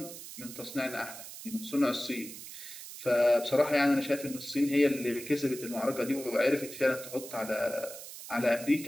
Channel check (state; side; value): noise; right; hiss, 12 dB below the sound